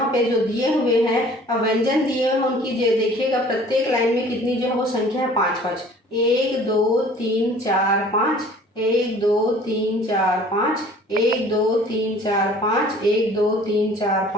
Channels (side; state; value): both; normal; correlation 0.50